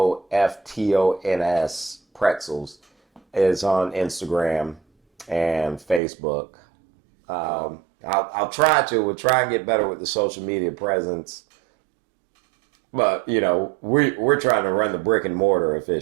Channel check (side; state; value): left; drops out; at 6.0 s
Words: Pretzels is on Instagram and Facebook. We'll try and get better with the social media presence. But, you know, we're trying to run the brick and mortar